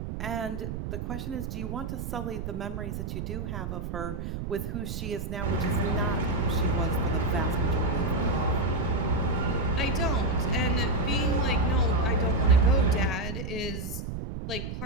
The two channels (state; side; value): noise; right; rumble, 6 dB below the sound